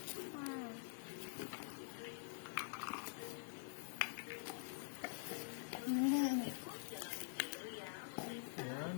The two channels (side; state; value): right; silent; digital silence